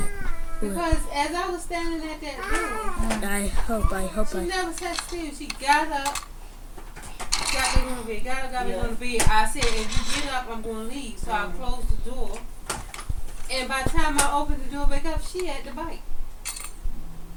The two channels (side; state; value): both; identical; correlation 1.00